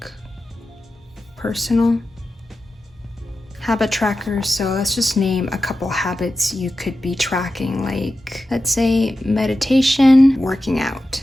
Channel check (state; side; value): normal; both; correlation 0.92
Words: personal, habit tracker. So let's just name a couple habits you could be tracking, like let's say meditation, working out,